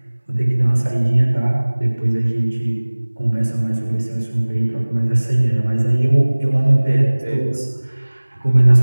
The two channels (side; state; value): both; inverted; correlation -1.00